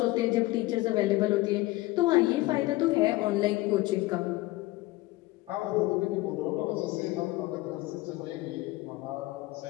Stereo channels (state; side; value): quieter; right; 19.4 dB